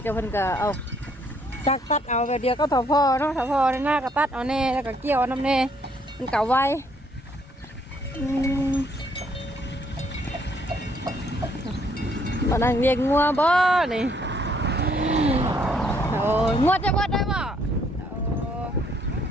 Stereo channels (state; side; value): normal; both; correlation 0.67